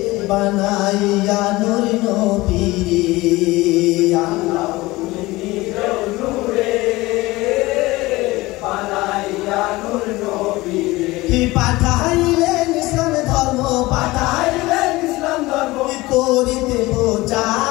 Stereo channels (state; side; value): quieter; right; 20.1 dB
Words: বানাইয়া নূর নবীরে আল্লাহ তুমি নিজ নূরে বানাইয়া নূর নবীরে পাঠাইলেন ইসলাম ধর্ম পাঠাইলেন ইসলাম ধর্ম করিতে